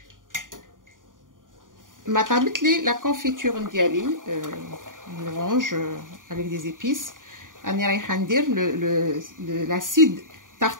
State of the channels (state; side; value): late; left; 0.89 ms